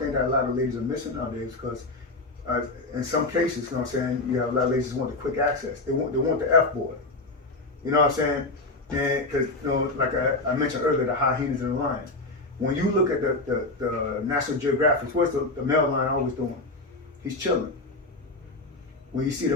thing that a lot of ladies are missing nowadays, because in some cases, you know what I'm saying, you have a lot of ladies who want the quick access. They want the F boy. You know what I'm saying? And because, you know, like I mentioned earlier, the hyenas and the lion. When you look at the National Geographic, what's the male lion always doing? He's chilling. When you see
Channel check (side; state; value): right; quieter; 3.1 dB